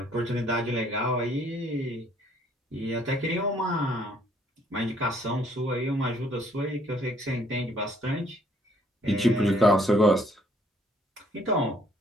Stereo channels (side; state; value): both; normal; correlation 0.64